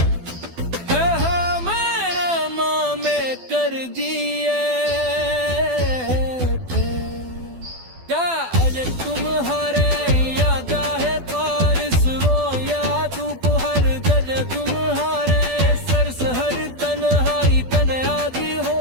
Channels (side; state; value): left; late; 12 ms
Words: कर दिए थे। क्या आज तुम्हारे याद है, बारिश रो या धूप, हर जगह तुम्हारे सर से हर तन्हाई तन्हाई हो